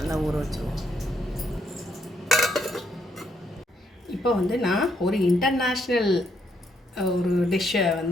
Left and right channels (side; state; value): both; normal; correlation 0.74